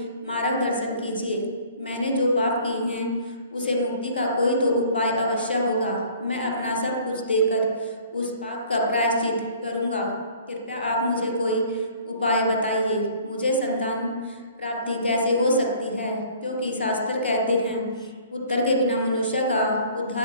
मार्गदर्शन कीजिए। मैंने जो पाप किए हैं उसे मुक्ति का कोई तो उपाय अवश्य होगा। मैं अपना सब कुछ देकर उस पाप का प्रायश्चित करूँगा। कृपया आप मुझे कोई उपाय बताइए। मुझे संतान प्राप्ति कैसे हो सकती है? क्योंकि शास्त्र कहते हैं पुत्र के बिना मनुष्य का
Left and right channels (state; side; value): inverted; both; correlation -0.52